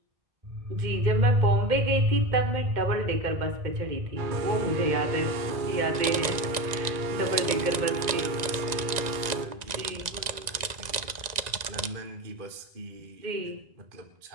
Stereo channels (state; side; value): late; left; 1.9 ms